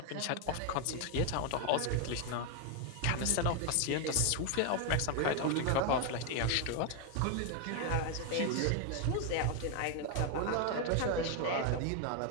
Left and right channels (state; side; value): different; both; correlation 0.01